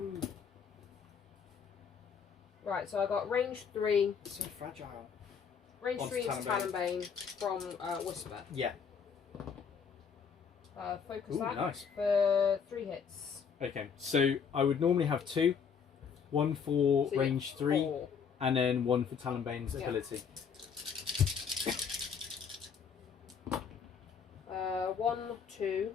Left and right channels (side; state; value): right; quieter; 6.6 dB